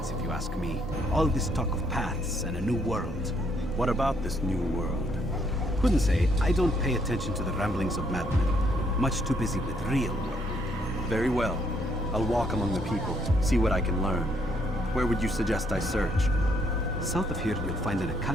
if you ask me. All this talk of paths and a new world. What about this new world? Couldn't say. I don't pay attention to the ramblings of madmen. Much too busy with real work. Very well. I'll walk among the people, see what I can learn. Where would you suggest I search? South of here, you'll find an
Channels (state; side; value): normal; both; correlation 0.70